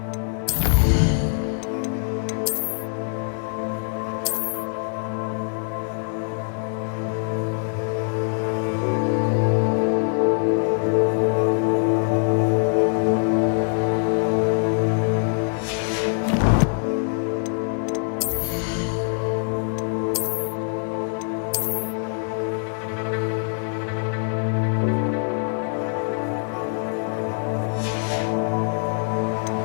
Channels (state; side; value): silent; right; 63 dB below the other